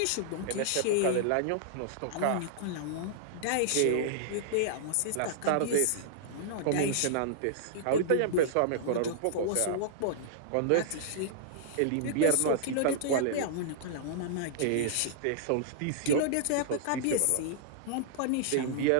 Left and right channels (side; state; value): both; different; correlation -0.02